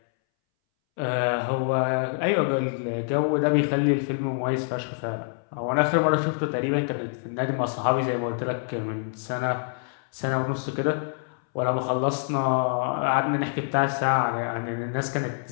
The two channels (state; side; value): silent; right; 61 dB below the other